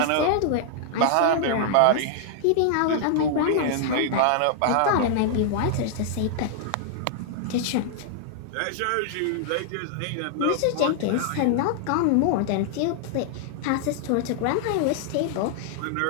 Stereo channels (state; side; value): different; both; correlation -0.01